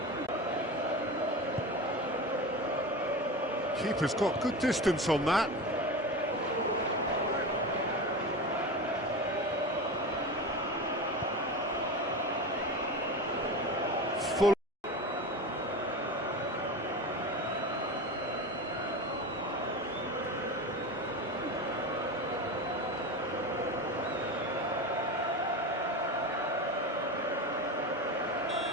Keeper's got good distance on that. Full.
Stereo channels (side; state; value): both; normal; correlation 0.25